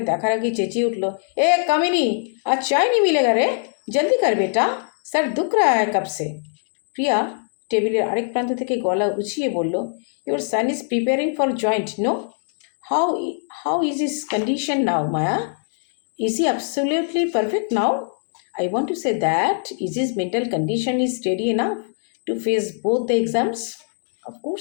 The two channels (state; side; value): silent; right; digital silence